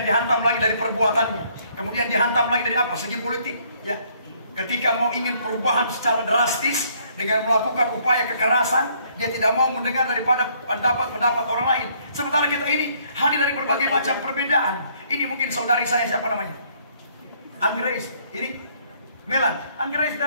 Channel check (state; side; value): inverted; both; correlation -0.65